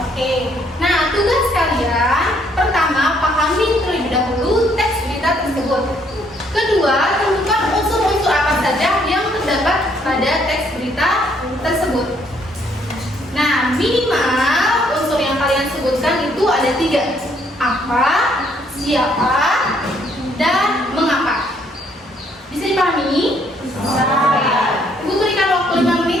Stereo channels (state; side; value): normal; both; correlation 0.68